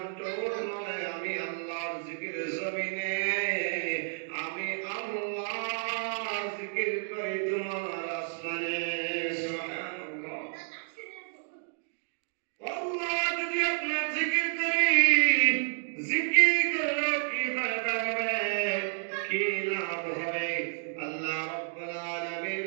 ঠোঁট নড়ে, আমি আল্লাহর জিকিরে জমিনে আমি আল্লাহর জিকির করি তোমার আসমানে। সুবহানাল্লাহ। আল্লাহ যদি আপনার জিকির করি, জিকির করলে কি ফায়দা হবে, কি লাভ হবে? আল্লাহ রাব্বুল আলামিন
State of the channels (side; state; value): left; silent; digital silence